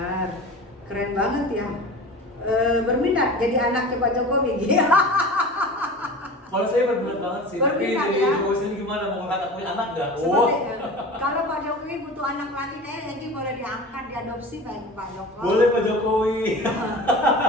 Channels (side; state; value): both; normal; correlation 0.35